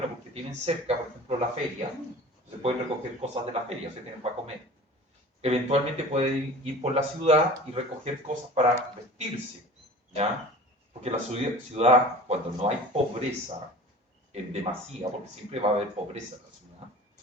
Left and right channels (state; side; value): normal; both; correlation 0.41